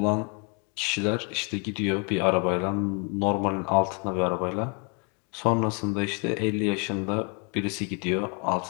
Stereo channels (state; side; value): quieter; right; 35.2 dB